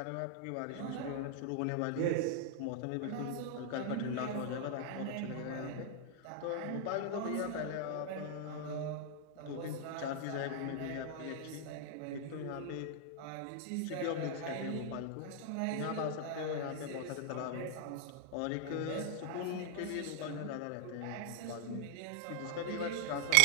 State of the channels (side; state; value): both; different; correlation 0.00